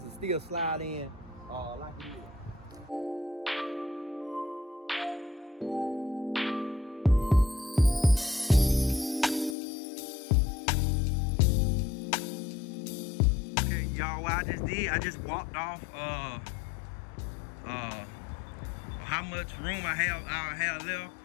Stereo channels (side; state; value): right; drops out; at 9.6 s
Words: still slide in like it is. Okay, y'all, what I just did, I just walked off how much room I have left.